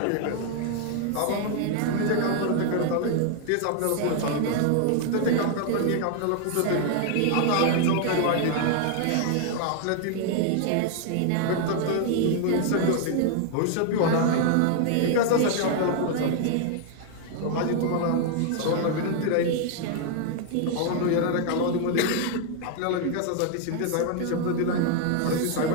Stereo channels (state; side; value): different; both; correlation 0.00